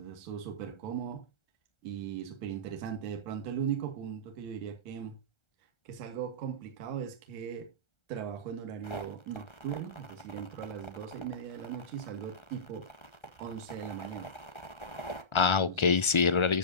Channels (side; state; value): right; late; 1.3 ms